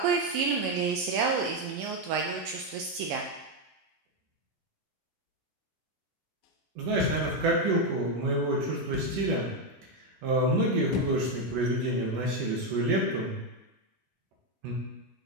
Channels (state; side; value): normal; both; correlation 0.05